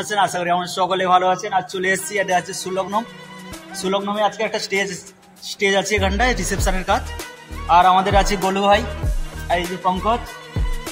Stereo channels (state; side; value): identical; both; correlation 1.00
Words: আছেন? আশা করি আমার সকলে ভালো আছেন। আজ চলে এসেছি, এটা আছে সুলগ্নমে আজকে একটা স্টেজ আছে, এখানটায় রিসেপশনের কাজ। আর আমাদের আছে গোলু ভাই, আর এই যে পঙ্কজ,